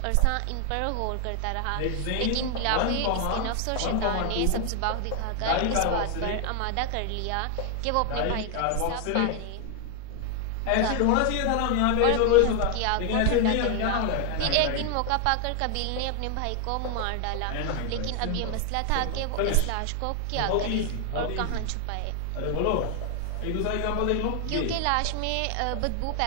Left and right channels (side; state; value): both; different; correlation 0.00